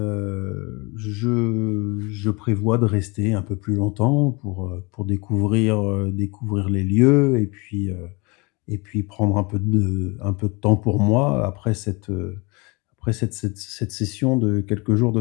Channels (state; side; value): quieter; right; 27.6 dB